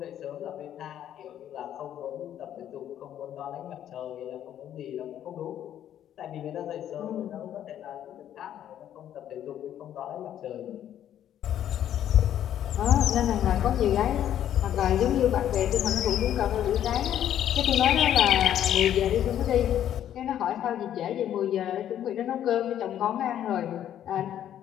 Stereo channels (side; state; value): right; quieter; 10.8 dB